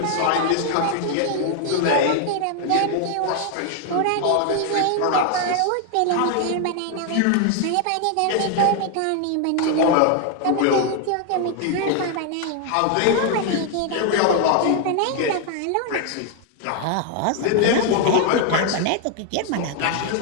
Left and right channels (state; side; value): different; both; correlation 0.00